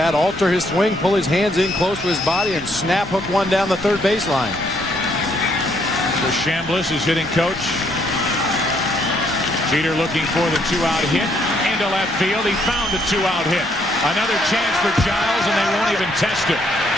alter his swing, pull his hands in close to his body, and snap hook one down the third baseline. So Chambliss is hitting coach. Jeter looking for the 2-out hit into left field. He found a 2-out hit. Another chance for Giles, and they won't even test it.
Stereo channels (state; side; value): normal; both; correlation 0.70